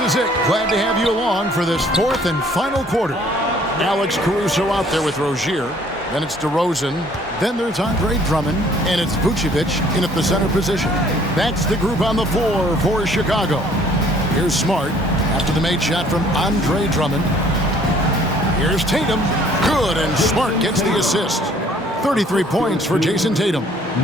it. Glad to have you along for this fourth and final quarter. Alex Caruso out there with Rozier. Then it's DeRozan. Then there's Andre Drummond. And it's Vucevic in at the center position. That's the group on the floor for Chicago. Here's Smart after the made shot from Andre Drummond. Here's Tatum. Good, and Smart gets the assist. 33 points for Jason Tatum.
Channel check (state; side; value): normal; both; correlation 0.58